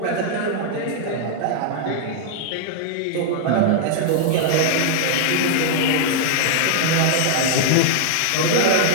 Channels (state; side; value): different; both; correlation -0.01